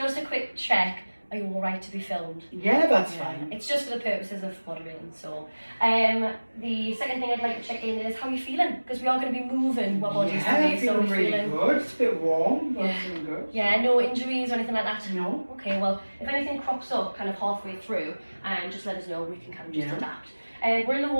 a quick check, are you alright to be filmed? Yeah, that's fine. It's just for the purposes of moderating. So the second thing I'd like to check in is how are you feeling? Because we are going to be moving our bodies today. So feeling really good. It's a bit warm, but feeling good. Yeah, no injuries or anything like that? No. Okay, well, if anything crops up kind of halfway through, just let us know, we can kind of just adapt. We're in a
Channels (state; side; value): inverted; both; correlation -1.00